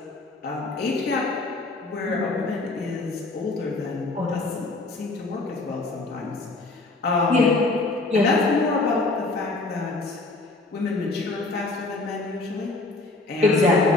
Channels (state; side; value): quieter; right; 3.2 dB